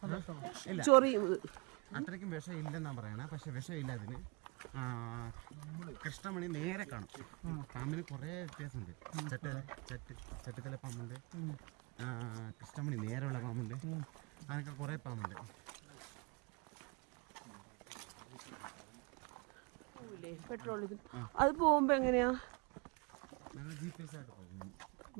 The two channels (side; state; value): left; quieter; 29.3 dB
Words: ഇല്ല, അത്രയ്ക്കും വിഷം ഇല്ലെന്നാ പറയണേ. പക്ഷെ വിഷമില്ല അതിന്. കൃഷ്ണമണി നേരെ കാണും. പാമ്പിന് കുറേ വ്യത്യാസമുണ്ട്. ചട്ടിത്തല പാമ്പുണ്ട്, കൃഷ്ണമണി നേരെയുള്ള പാമ്പുണ്ട്, അങ്ങനെയൊക്കെ കുറേ പാമ്പുണ്ട്. അത് പോകുമ്പോ എങ്ങനെയാ? ഞങ്ങൾ GPS ആയിട്ട് പോകും.